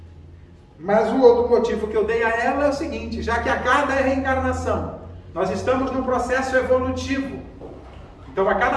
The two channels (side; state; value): both; identical; correlation 1.00